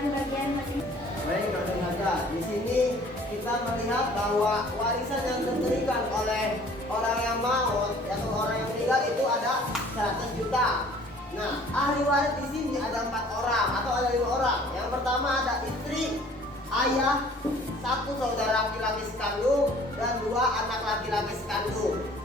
bagian masing. Baik, saudara, di sini kita melihat bahwa warisan yang diberikan oleh orang yang maut atau orang yang meninggal itu ada 100 juta. Nah, ahli waris di sini ada 4 orang atau ada 5 orang. Yang pertama ada istri, ayah, 1 saudara laki-laki sekandung, dan 2 anak laki-laki sekandung.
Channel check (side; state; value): both; normal; correlation 0.53